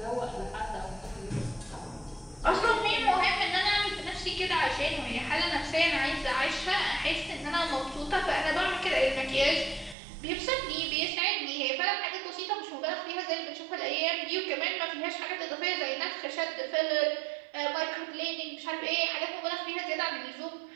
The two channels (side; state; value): left; drops out; at 10.0 s